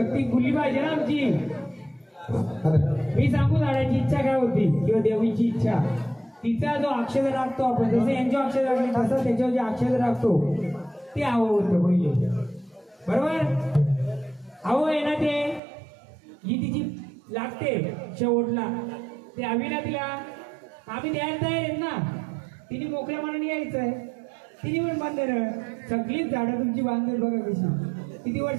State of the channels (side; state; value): left; drops out; at 15.6 s